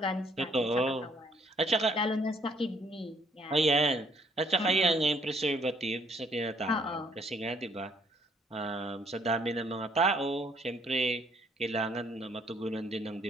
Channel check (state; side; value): normal; both; correlation 0.66